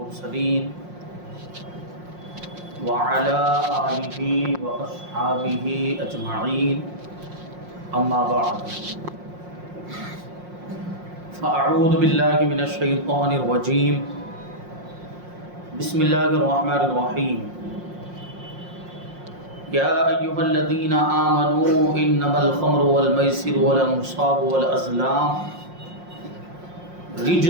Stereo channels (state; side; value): late; left; 5.6 ms